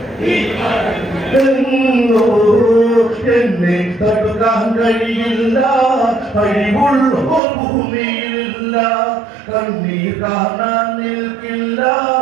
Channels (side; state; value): left; drops out; at 7.4 s